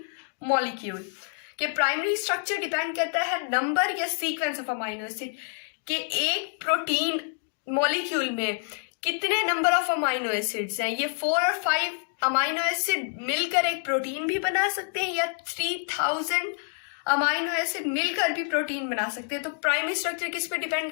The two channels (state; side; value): silent; right; 58 dB below the other